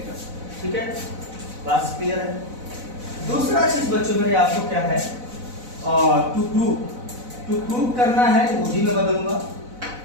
ठीक है, बात क्लियर है। दूसरा चीज बच्चों मेरे आपको क्या है, टू प्रूव करना है, वो भी मैं बदलूंगा।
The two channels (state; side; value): late; left; 4.0 ms